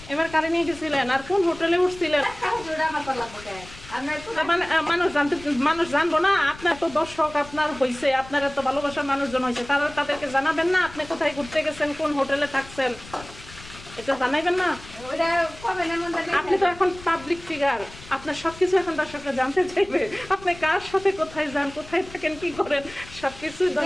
এবার কারে নিয়ে গেছিলেন? আর কোন হোটেলে উঠছিলেন? মানুষ জানবো না? আপনার তো দর্শক আপনার হয়েছে, আপনার এত ভালোবাসার মানুষজন হয়েছে, তাদেরকে জানাবেন না আপনি কোথায় ঘুরতে গেছেন, কোন হোটেলে থাকছেন? এটা জানাইবেন না? আপনি তো এখন পাবলিক ফিগার, আপনার সবকিছু এখন দর্শকরা জানতে চাইবে। আপনি কার সাথে কোথায় যান, কোথায় থাকেন, কি করেন, সবকিছু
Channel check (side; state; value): left; noise; rumble, 18 dB below the sound